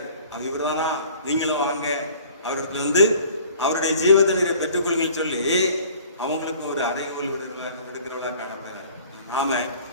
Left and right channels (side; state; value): both; inverted; correlation -0.50